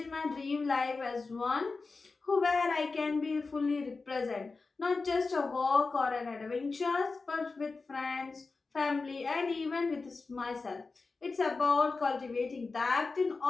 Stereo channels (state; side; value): quieter; right; 4.0 dB